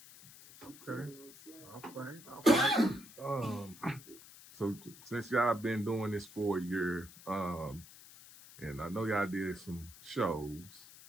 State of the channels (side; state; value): left; noise; hiss, 19 dB below the sound